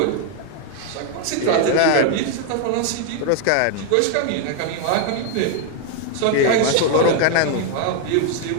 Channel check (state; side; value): different; both; correlation 0.00